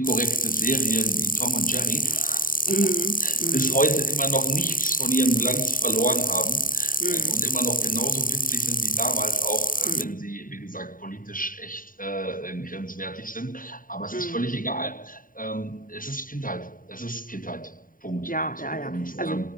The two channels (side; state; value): right; late; 0.40 ms